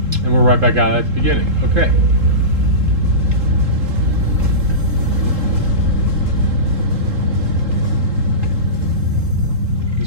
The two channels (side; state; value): left; late; 3.7 ms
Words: right back out at the beginning. Okay.